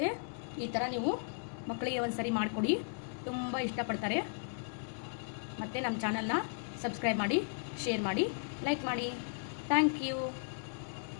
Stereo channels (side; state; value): right; silent; 54 dB below the other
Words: ಈ ಥರ ನೀವು ಮಕ್ಕಳಿಗೆ ಒಂದು ಸರಿ ಮಾಡಿಕೊಡಿ, ತುಂಬ ಇಷ್ಟಪಡ್ತಾರೆ. ಮತ್ತು ನಮ್ಮ ಚಾನಲ್ನ ಸಬ್ಸ್ಕ್ರೈಬ್ ಮಾಡಿ, ಶೇರ್ ಮಾಡಿ, ಲೈಕ್ ಮಾಡಿ. Thank you.